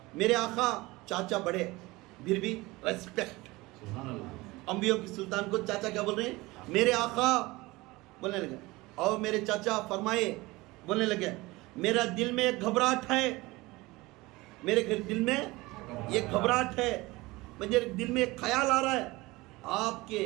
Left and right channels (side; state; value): left; quieter; 21.3 dB